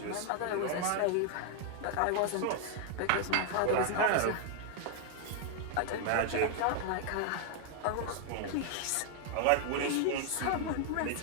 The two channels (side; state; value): both; different; correlation 0.00